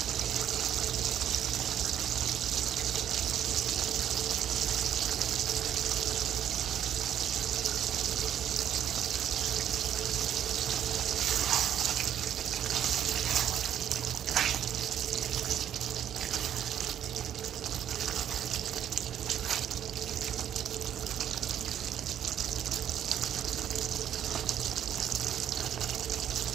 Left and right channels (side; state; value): left; quieter; 10.1 dB